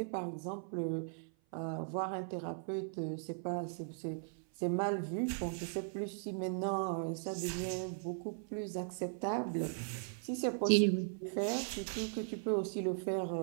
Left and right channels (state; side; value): silent; left; 52 dB below the other